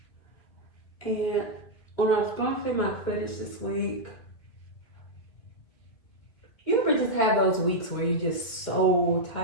And when I was going through my footage this week, you ever just have those weeks where you're just so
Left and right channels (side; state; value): right; late; 2.4 ms